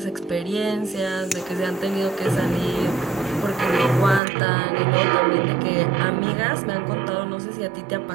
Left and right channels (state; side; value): drops out; left; at 4.2 s